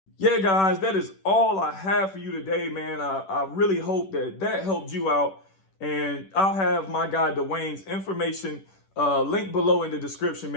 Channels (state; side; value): late; right; 10 ms